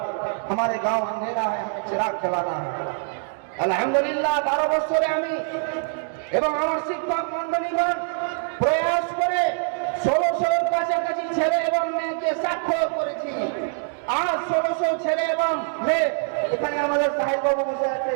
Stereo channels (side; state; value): left; silent; 62 dB below the other